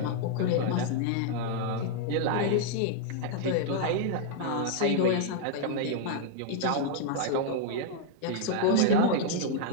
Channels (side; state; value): both; different; correlation -0.01